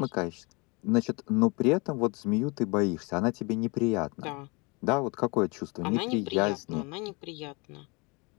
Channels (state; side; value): quieter; right; 28.7 dB